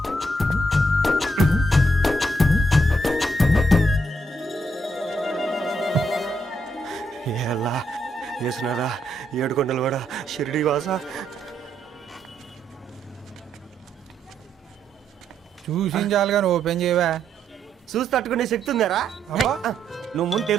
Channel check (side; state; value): both; normal; correlation 0.76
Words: ఎలా వేసినారా ఏడుకొండలు కూడా షిరిడి వాస. చూసించాలి కానీ ఓపెన్ చేయవా? చూసి తట్టుకునే శక్తి ఉందారా? నువ్వు ముందు